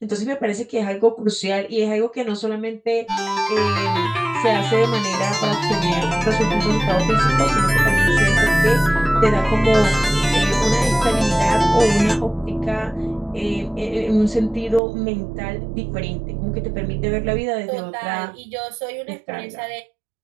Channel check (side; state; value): left; drops out; at 14.8 s